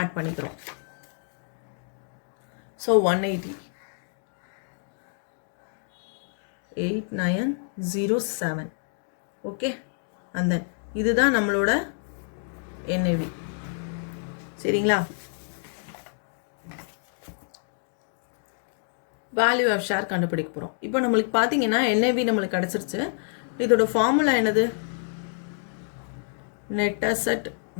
பண்ணிக்கிறோம். ஸோ 180. 8907. ஓகே, அந்த இதுதான் நம்மளோட NAV. சரிங்களா? வேல்யூ ஆஃப் ஷேர் கண்டுபிடிக்க போகிறோம். இப்போ நம்மளுக்கு பார்த்தீங்கன்னா NAV நம்மளுக்கு கிடச்சிருச்சு. இதோட ஃபார்முலா என்னது? Net asset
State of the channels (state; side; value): silent; right; digital silence